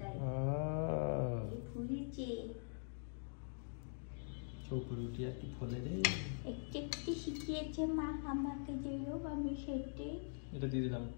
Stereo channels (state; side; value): silent; right; digital silence